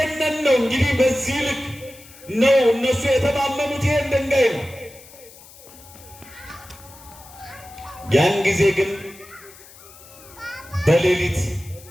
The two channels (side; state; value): left; noise; hiss, 21 dB below the sound